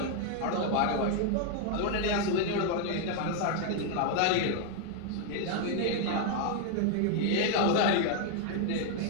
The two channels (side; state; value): both; different; correlation 0.00